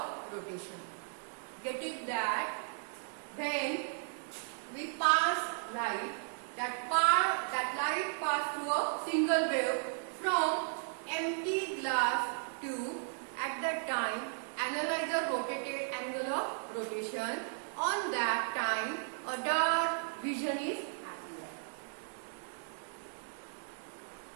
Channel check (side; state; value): left; silent; digital silence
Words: rotation. Get it that? Then we pass light. That light pass through a single wave from empty glass tube. At that time, analyzer rotated angle of rotation. On that time, a dark vision is appear.